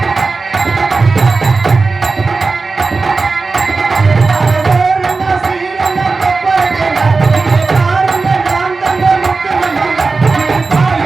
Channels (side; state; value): left; quieter; 4.0 dB